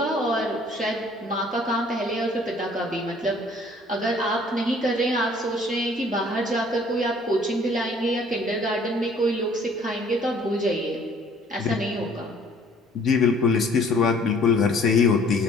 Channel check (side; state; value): both; normal; correlation 0.56